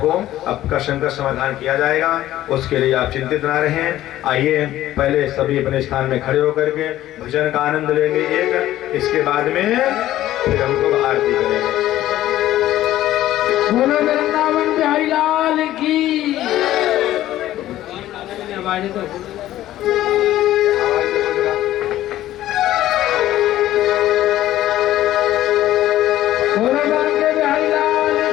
आपका शंका समाधान किया जाएगा, उसके लिए आप चिंतित ना रहें। आइए पहले सभी अपने स्थान में खड़े होकर के भजन का आनंद लेंगे एक, इसके बाद में फिर हम लोग आरती करेंगे। बोलो वृंदावन बिहारी लाल की।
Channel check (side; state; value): right; quieter; 13.9 dB